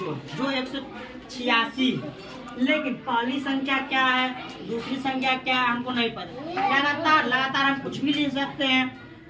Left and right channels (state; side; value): identical; both; correlation 1.00